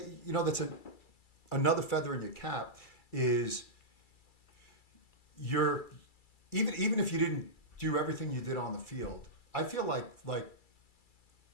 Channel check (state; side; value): late; right; 2.3 ms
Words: you know, that's another feather in your cap is even if you didn't do everything you did on the field, I feel like